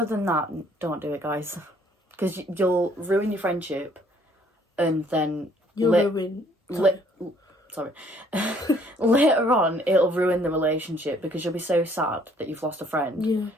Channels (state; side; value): normal; both; correlation 0.62